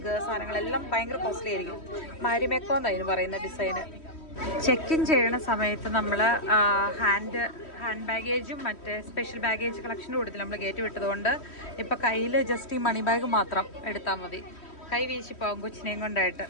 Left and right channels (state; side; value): late; right; 3.1 ms